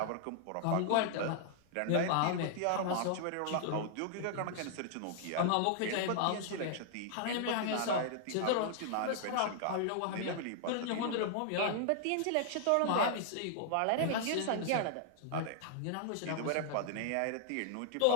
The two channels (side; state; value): both; different; correlation -0.01